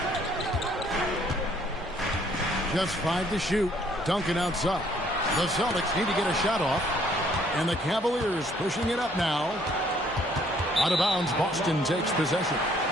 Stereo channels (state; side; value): normal; both; correlation 0.63